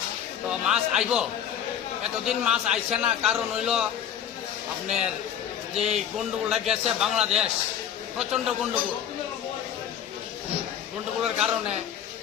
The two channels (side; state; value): right; quieter; 9.4 dB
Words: তো মাছ আইব, এতদিন মাছ আইছে না, কারণ হইল আপনার যে গন্ডগোলটা গেছে বাংলাদেশ, প্রচণ্ড গন্ডগোলের কারণে